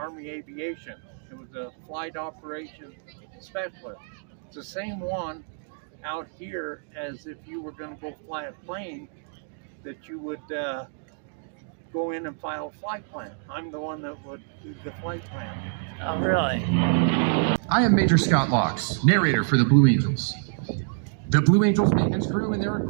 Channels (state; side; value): silent; left; digital silence